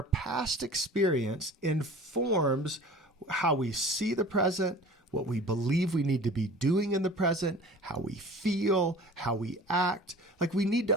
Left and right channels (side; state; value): both; normal; correlation 0.42